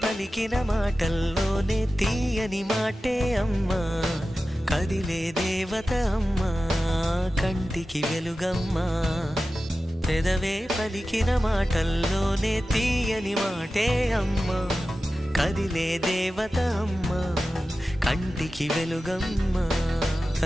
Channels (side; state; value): both; normal; correlation 0.94